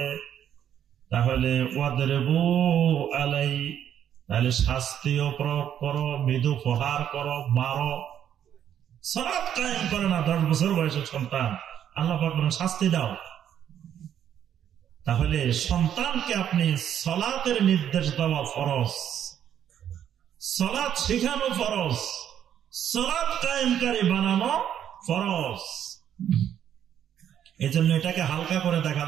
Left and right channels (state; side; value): quieter; left; 9.8 dB